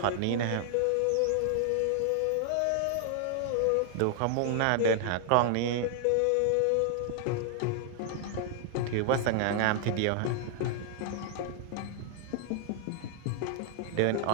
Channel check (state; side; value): different; both; correlation 0.00